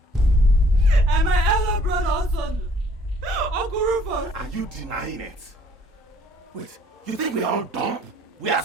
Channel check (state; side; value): normal; both; correlation 0.59